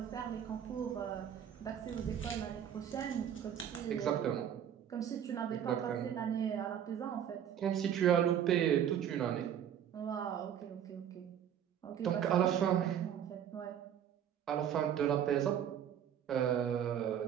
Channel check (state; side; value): quieter; left; 9.4 dB